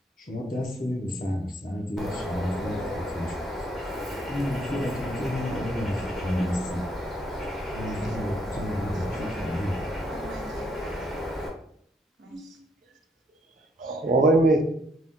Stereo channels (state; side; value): normal; both; correlation 0.71